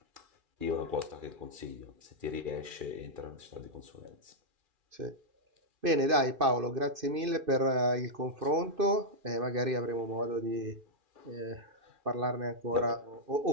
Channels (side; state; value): left; late; 2.5 ms